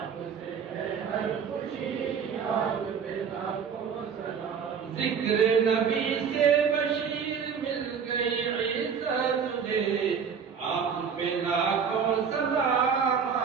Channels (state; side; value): quieter; left; 6.8 dB